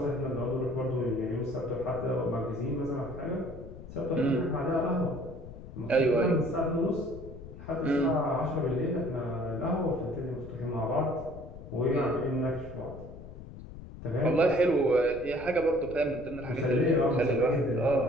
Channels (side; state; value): left; noise; rumble, 14 dB below the sound